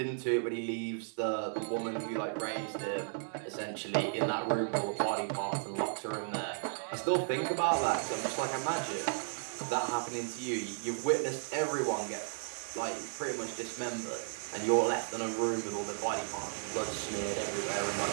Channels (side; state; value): left; silent; 55 dB below the other